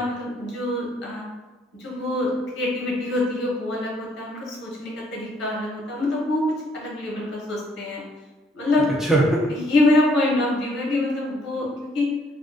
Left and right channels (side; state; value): both; normal; correlation 0.66